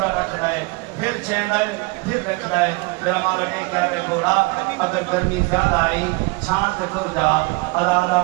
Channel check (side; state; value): left; quieter; 26.9 dB